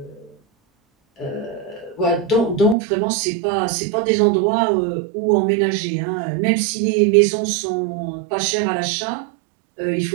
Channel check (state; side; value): drops out; left; at 2.8 s